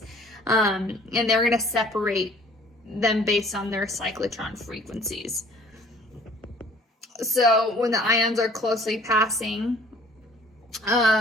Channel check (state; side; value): normal; both; correlation 0.54